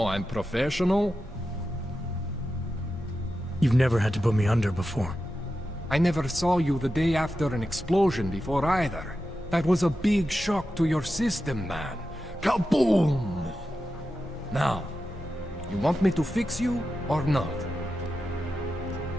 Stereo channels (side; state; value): both; normal; correlation 0.91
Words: I'm professional. You've never had to put me under before. I never saw you the day after an explosion before either. That was a big shock to your system, man. Kaboom! Now, you want me to fix you or not?